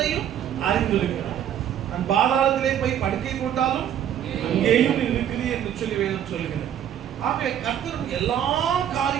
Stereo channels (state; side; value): quieter; left; 10.1 dB